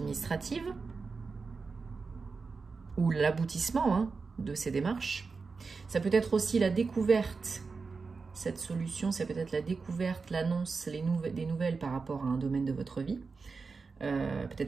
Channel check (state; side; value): quieter; left; 4.6 dB